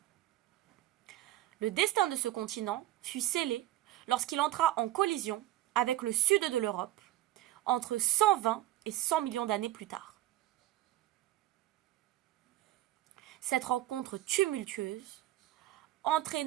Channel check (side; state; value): left; quieter; 14.9 dB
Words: Le destin de ce continent fut scellé lorsqu'il entra en collision avec le sud de l'Europe entre 120 et 100 millions d'années plus tard. Cette rencontre tumultueuse